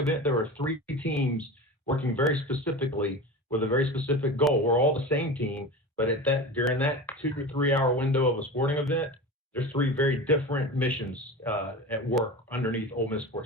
there are three teams working very specifically with a very specific goal. We're all the same team, but during that 2 to 3 hour window of a sporting event, there's three very different missions at work underneath Ole Miss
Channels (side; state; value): both; normal; correlation 0.30